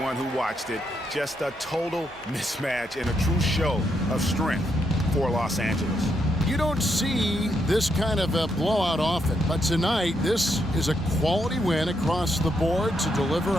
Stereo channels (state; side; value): normal; both; correlation 0.79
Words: who watched it. Just a total mismatch and a true show of strength for Los Angeles. You don't see this kind of a blowout often, but tonight this is a quality win across the board to deliver